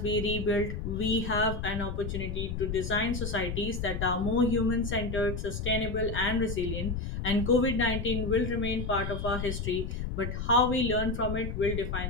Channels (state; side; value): noise; left; rumble, 4 dB below the sound